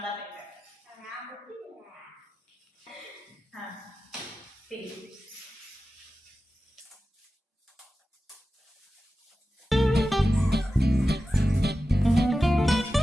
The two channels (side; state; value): both; normal; correlation 0.94